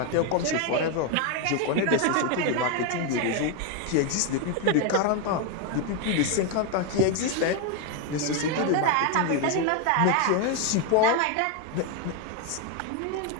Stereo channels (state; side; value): different; both; correlation 0.01